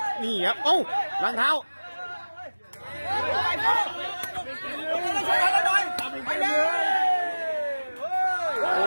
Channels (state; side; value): inverted; both; correlation -1.00